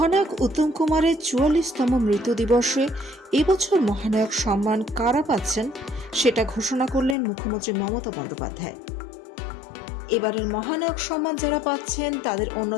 উত্তম কুমারের ৪৪তম মৃত্যু দিবসে এবছর মহানায়ক সম্মান কারা পাচ্ছেন সেটা ঘোষণা করলেন মুখ্যমন্ত্রী মমতা বন্দ্যোপাধ্যায়। এবারের মহানায়ক সম্মান যারা পাচ্ছেন তাদের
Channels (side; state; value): right; drops out; at 7.2 s